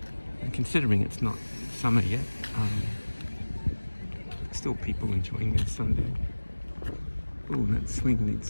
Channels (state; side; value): inverted; both; correlation -1.00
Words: And considering it's not summer yet, still people enjoying their Sunday. Oh, that swing